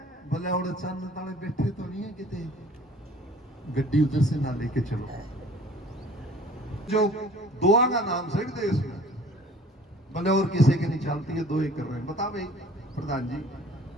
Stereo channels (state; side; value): normal; both; correlation 0.50